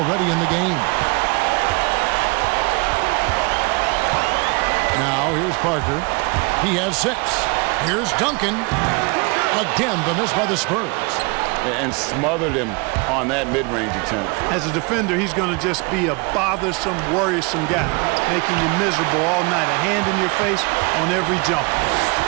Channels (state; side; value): quieter; left; 28.8 dB